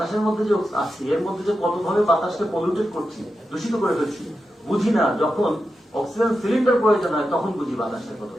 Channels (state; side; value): normal; both; correlation 0.89